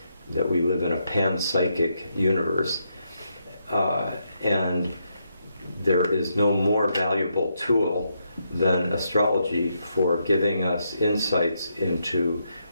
we live in a panpsychic universe, and there is no more valuable tool than astrology for giving us insights into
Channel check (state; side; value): inverted; both; correlation -0.80